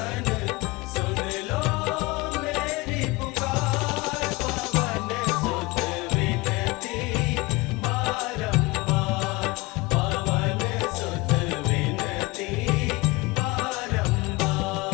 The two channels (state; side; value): quieter; right; 23.1 dB